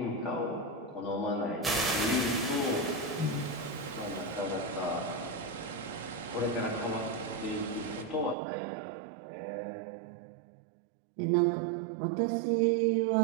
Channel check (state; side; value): drops out; left; at 8.3 s